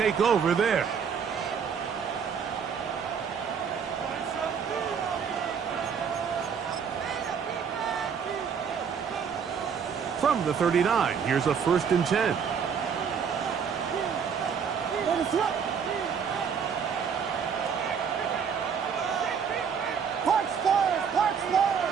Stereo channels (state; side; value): quieter; left; 6.9 dB